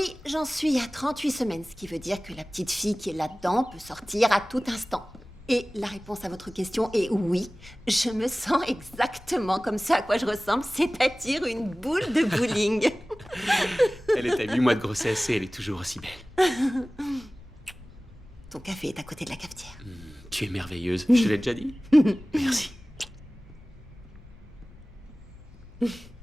j'en suis à 38 semaines, ce qui veut dire que la petite fille qui est là-dedans peut sortir à tout instant. Et la réponse à votre question est oui, je me sens exactement comme ce à quoi je ressemble, c'est-à-dire une boule de bowling. Elle est à 8 mois de grossesse et elle est toujours aussi belle. Ton café est à côté de la cafetière. Tu es merveilleuse, je te l'ai déjà dit. Merci.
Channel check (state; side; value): noise; left; rumble, 21 dB below the sound